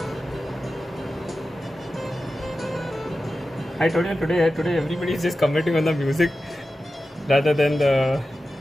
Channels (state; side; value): normal; both; correlation 0.93